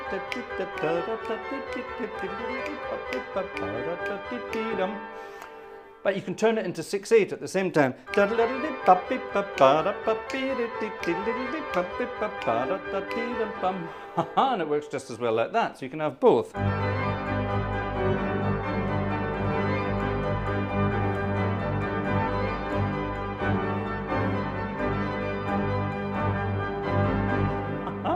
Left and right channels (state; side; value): identical; both; correlation 1.00